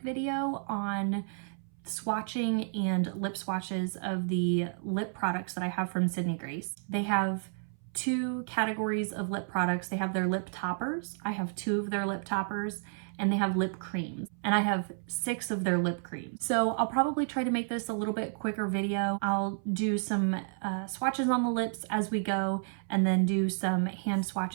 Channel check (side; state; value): left; silent; 57 dB below the other